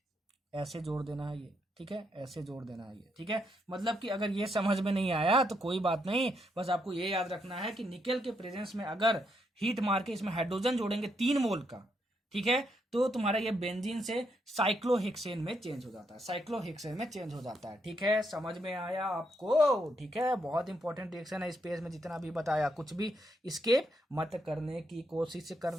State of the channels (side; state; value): both; normal; correlation 0.78